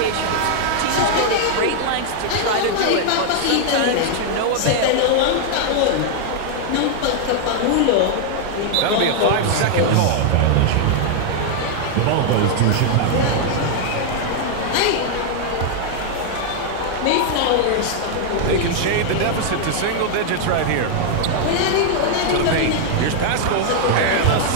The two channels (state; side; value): different; both; correlation 0.00